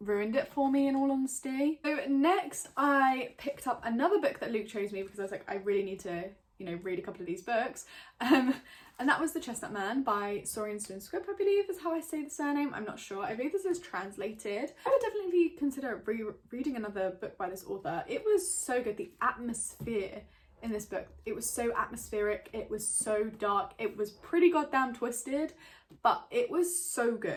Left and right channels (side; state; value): both; identical; correlation 1.00